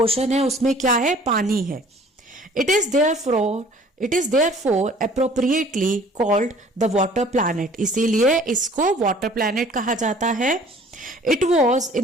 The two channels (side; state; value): both; normal; correlation 0.52